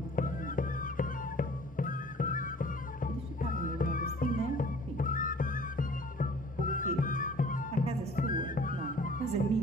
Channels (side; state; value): both; normal; correlation 0.50